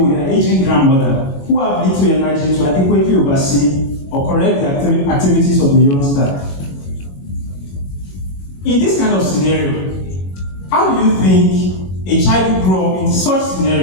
their aging grandmother, who have little energy to adequately oversee or correct the activities of the youngster. In this kind of scenario, how do you think a child who grew up in such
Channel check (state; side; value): late; right; 21 ms